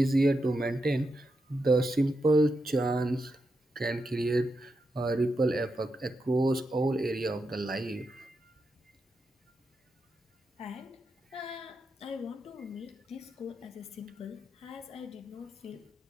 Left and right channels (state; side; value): normal; both; correlation 0.86